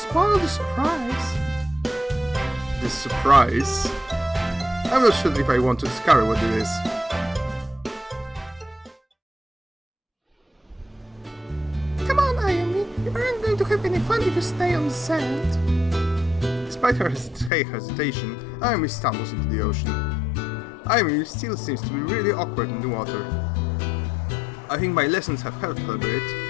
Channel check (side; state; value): right; drops out; at 17.5 s